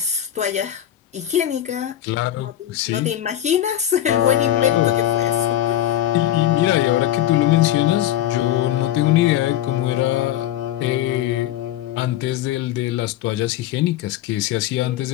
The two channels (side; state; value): right; quieter; 12.1 dB